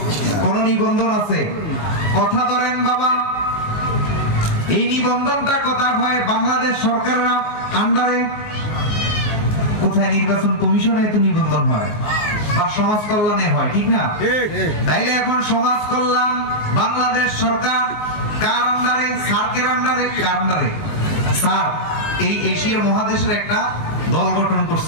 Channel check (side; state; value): right; late; 19 ms